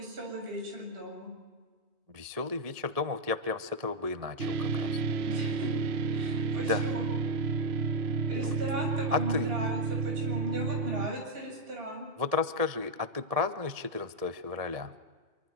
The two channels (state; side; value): late; left; 1.8 ms